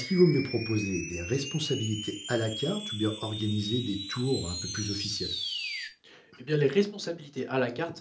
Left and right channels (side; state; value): both; identical; correlation 1.00